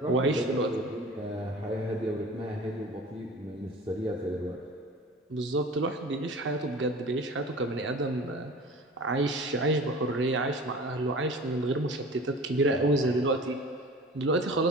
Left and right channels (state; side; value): normal; both; correlation 0.40